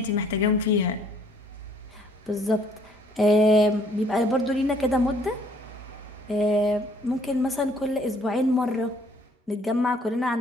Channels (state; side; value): normal; both; correlation 0.61